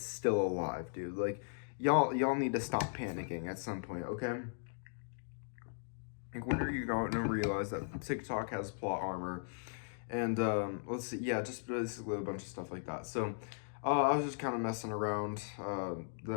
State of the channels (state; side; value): silent; right; digital silence